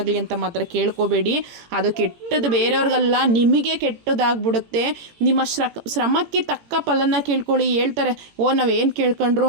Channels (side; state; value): left; late; 17 ms